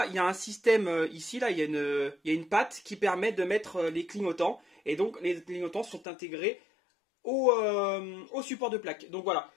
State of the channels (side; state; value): right; drops out; at 6.1 s